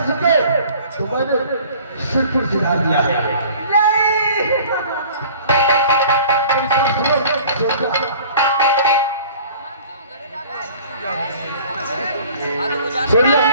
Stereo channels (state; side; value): inverted; both; correlation -0.48